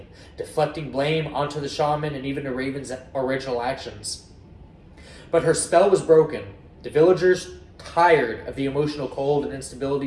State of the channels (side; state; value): both; identical; correlation 1.00